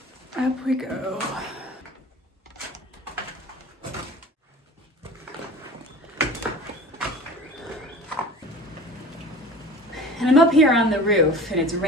Up we go. And I'm up here on the roof and it's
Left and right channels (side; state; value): both; normal; correlation 0.39